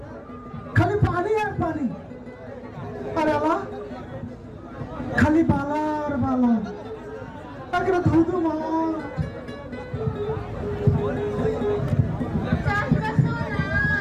খালি পানি আর পানি, আরে আল্লাহ খালি বালা আর বালা, একটা ধুধু মার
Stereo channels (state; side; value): identical; both; correlation 1.00